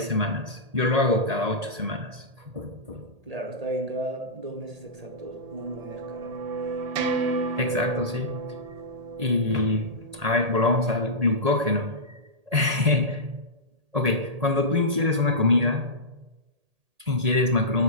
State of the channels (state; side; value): late; left; 1.8 ms